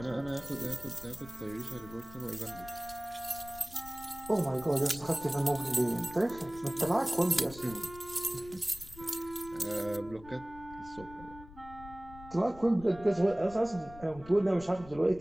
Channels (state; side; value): noise; left; rumble, 18 dB below the sound